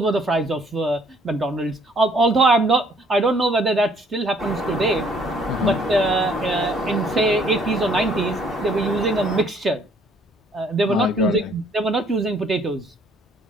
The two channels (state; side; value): normal; both; correlation 0.62